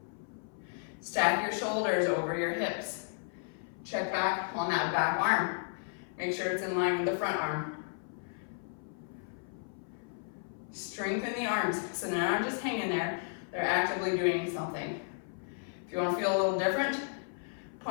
Stack your shoulders over your hips. Check back on that back arm. Make sure it's in line with the front arm. Strengthen the arms, so they're not just hanging there, they're actively doing something. If you want to feel a little different,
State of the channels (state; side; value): silent; right; 55 dB below the other